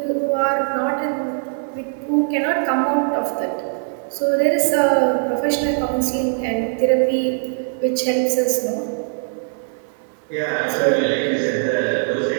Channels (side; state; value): left; silent; digital silence